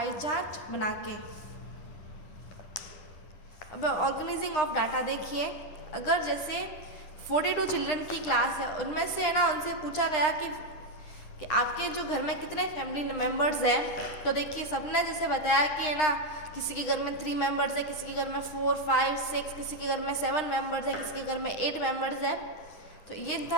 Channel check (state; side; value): late; right; 9.8 ms